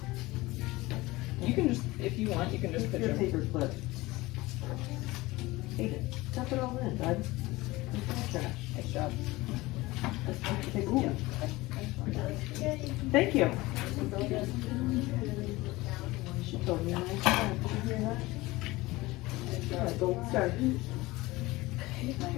You can just, if you want, you can just put Your your paper clip. Hey, stuff it all in, bud. It's trash. nice job. Ooh. Thank you. She told me a nice time. Did you hear that? Gold star.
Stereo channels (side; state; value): right; quieter; 20.3 dB